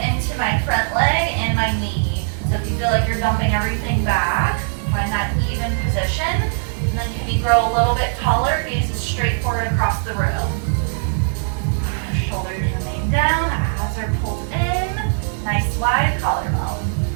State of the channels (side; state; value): left; silent; digital silence